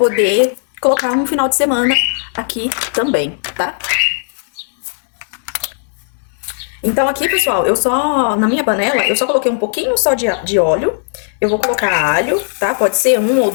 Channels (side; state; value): right; silent; digital silence